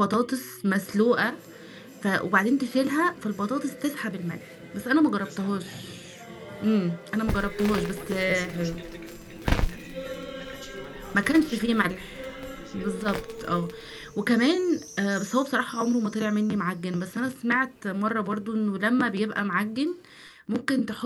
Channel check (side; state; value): both; identical; correlation 1.00